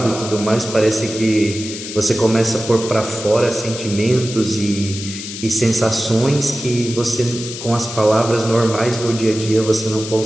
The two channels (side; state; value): left; noise; hiss, 9 dB below the sound